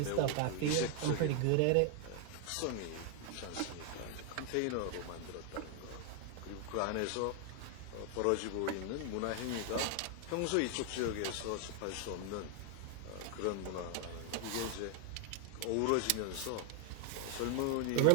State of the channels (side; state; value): both; different; correlation 0.00